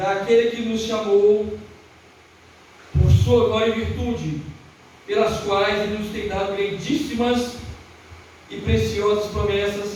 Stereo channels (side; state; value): both; identical; correlation 1.00